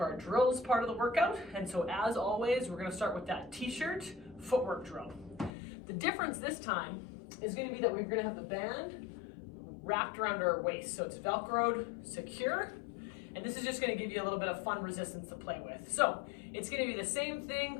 our drills part of the workout. And so as always, we're gonna start with that t-shirt footwork drill. The difference this time is gonna be that we're gonna have the band wrapped around our waist. So it's Velcroed, secure. And this is just gonna give you a little bit of fun resistance to play with. So it's gonna be the same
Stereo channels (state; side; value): drops out; right; at 5.5 s